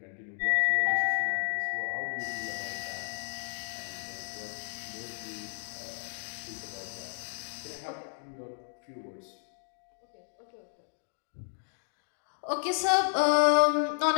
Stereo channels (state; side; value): silent; right; digital silence